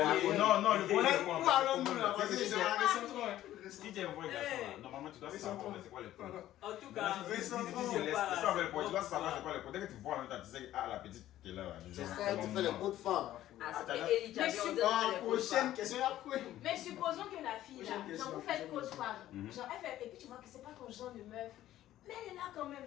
Non, le point, c'est Où quoi? allons-nous là? Vas-y, c'est un récentron. Si tu es un vrai garçon, là, normalement, tu dois savoir c'est quoi les points. En tout cas, C'est ça, le point. Tu dois savoir c'est quoi les points. Dès que tu vois en même temps, tu sais, ah, la petite qui est là. C'est ça, tu fais les coups de femmes. Ah, c'était Eli Jabi, on dirait Prochaine question, après. Mais supposons que la fille là, Prochaine genre vous question. faites côte fois, Mhm. genre elle fait, et puis tu vois que c'est pas ton genre de meuf, mais elle est là quand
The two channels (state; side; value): quieter; right; 13.5 dB